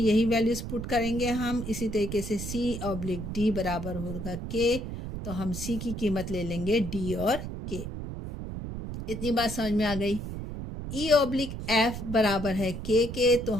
वैल्यूज पुट करेंगे हम। इसी तरीके से c ऑब्लिक d बराबर होगा k, तो हम c की कीमत ले लेंगे d और k। इतनी बात समझ में आ गई। e ऑब्लिक f बराबर है k के, तो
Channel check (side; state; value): right; noise; rumble, 7 dB below the sound